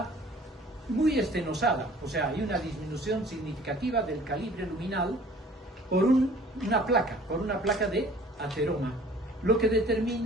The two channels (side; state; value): both; normal; correlation 0.51